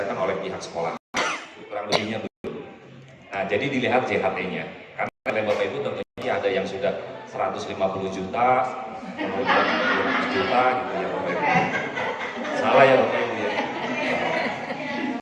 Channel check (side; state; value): both; identical; correlation 1.00